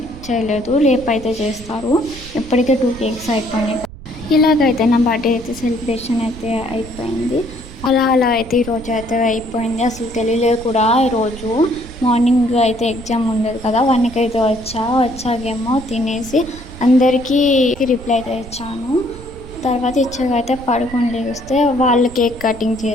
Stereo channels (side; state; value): right; noise; rumble, 15 dB below the sound